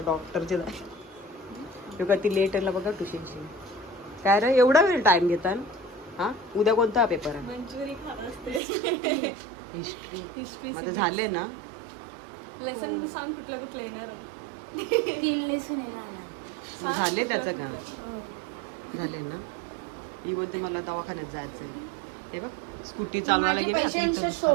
डॉक्टरचे जायचं. का ती लेट आला बघा ट्युशनची. काय रे एवढा वेळ टाईम घेतात? हां उद्या कोणता पेपर आहे? मंचुरी खात असते. हिस्ट्री. मग झाले ना लेसन सांग कुठलं कुठलं येणार. 3 लेसन येणार. मग झाले त्याचं का? झाले ना. ही बोलते मला दवाखान्यात जायचं आहे. हे बघ स्कूटी चालवायला गेली आता इथं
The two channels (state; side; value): drops out; left; at 8.6 s